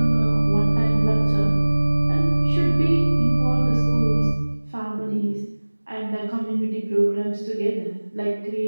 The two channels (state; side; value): inverted; both; correlation -1.00